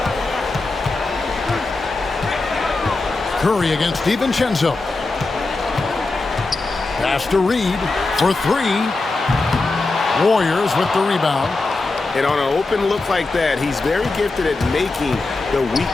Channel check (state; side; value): quieter; right; 3.4 dB